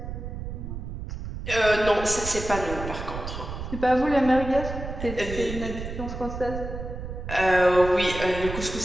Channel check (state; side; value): noise; right; rumble, 7 dB below the sound